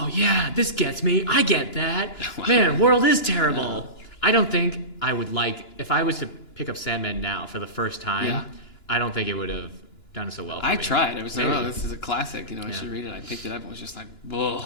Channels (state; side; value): late; right; 2.9 ms